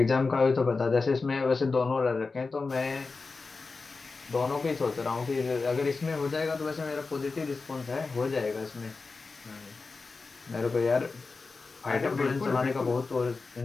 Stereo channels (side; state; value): right; quieter; 4.1 dB